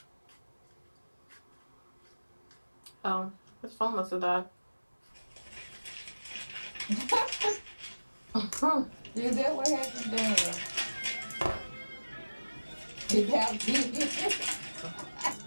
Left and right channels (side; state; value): both; inverted; correlation -1.00